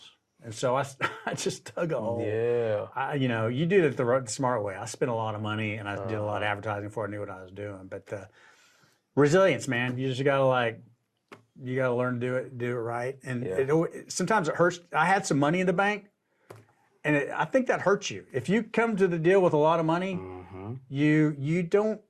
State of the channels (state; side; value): identical; both; correlation 1.00